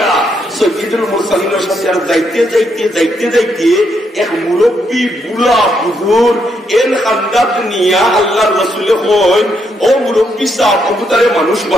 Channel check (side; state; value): both; normal; correlation 0.77